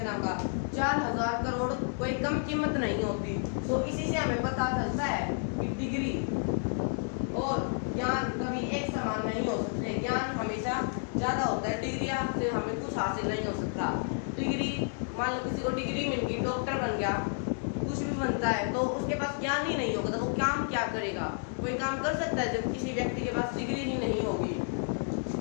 नाम का। 4,000 करोड़ कोई कम कीमत नहीं होती। तो इसी से हमें पता चलता है कि डिग्री और ज्ञान कभी एक समान नहीं हो सकते। ज्ञान हमेशा ज़्यादा होता है, डिग्री से हमें कुछ हासिल नहीं हो सकता। डिग्री मान लो किसी को डिग्री मिल गई, डॉक्टर बन गया, कुछ भी बनता है, तो उसके पास ज्ञान ही नहीं होगा तो वो काम क्या करेगा? कोई काम कर सकता है जब किसी व्यक्ति के पास डिग्री ही नहीं होगी?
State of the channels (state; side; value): silent; right; 56 dB below the other